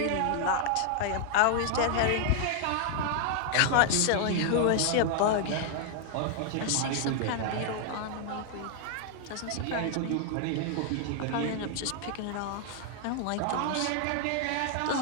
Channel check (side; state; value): both; different; correlation 0.00